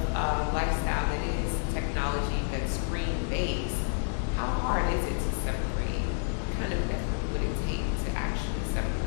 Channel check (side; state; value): right; silent; 58 dB below the other